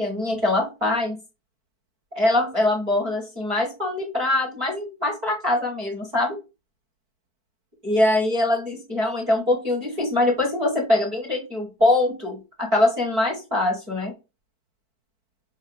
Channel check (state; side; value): late; left; 4.5 ms